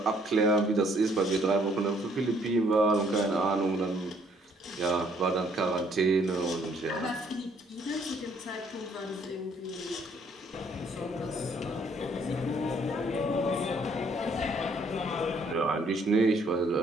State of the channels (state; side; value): normal; both; correlation 0.64